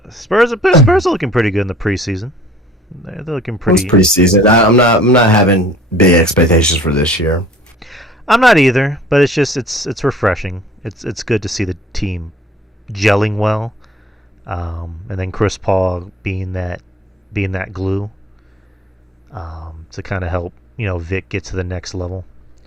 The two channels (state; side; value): normal; both; correlation 0.52